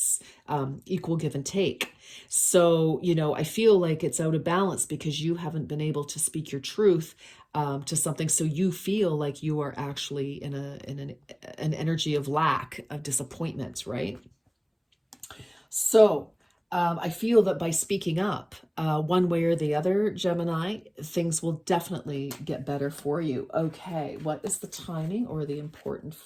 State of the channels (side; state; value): both; identical; correlation 1.00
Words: equal give and take. So, I feel like it's out of balance because you haven't been able to speak your truth to something. So you feel like you are actually in an energy of lack, of disappointment, right? So I feel that by speaking up one way or the other, Gemini, things will definitely get better for you. Okay, what is the timing or the important